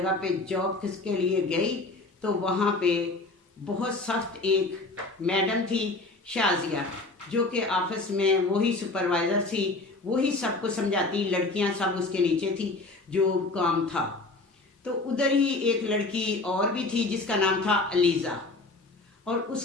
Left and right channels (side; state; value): right; quieter; 3.3 dB